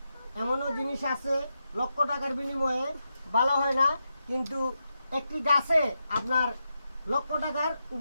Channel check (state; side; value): inverted; both; correlation -0.87